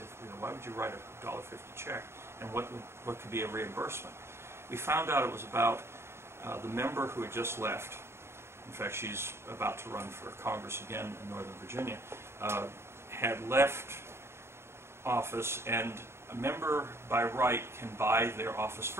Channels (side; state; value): left; late; 0.12 ms